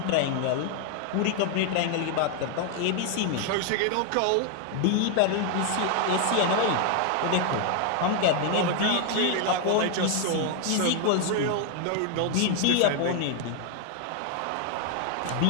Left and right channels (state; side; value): different; both; correlation 0.00